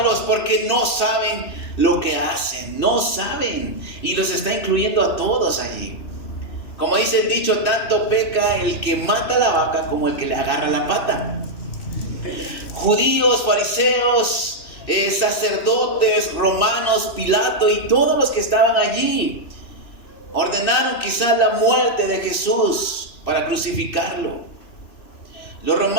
porque no saben lo que hacen, no saben. Y los está incluyendo a todos allí. Como dice el dicho, tanto peca el que mata la vaca como el que le agarra la pata. Judíos, fariseos, sacerdotes, romanos, Pilato y todos los que estaban allí ordenaron quizás la muerte de Jesús para crucificarlo. Los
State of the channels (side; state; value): right; late; 2.6 ms